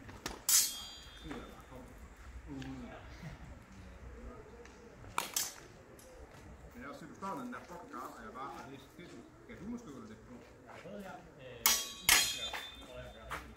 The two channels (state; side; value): identical; both; correlation 1.00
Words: Men jeg har set, du står den der fucking garn, og jeg bare har læst det. Kan du måske gøre det på? Jeg har prøvet her.